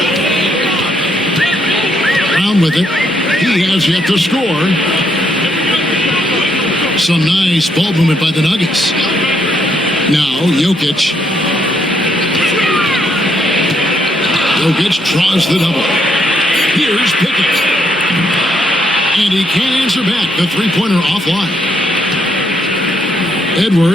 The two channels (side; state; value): both; normal; correlation 0.74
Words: Brown with it. He has yet to score. Some nice ball movement by the Nuggets. Now Jokic. Jokic draws the double. Here's Pickett. And he can't answer back. The three-pointer offline.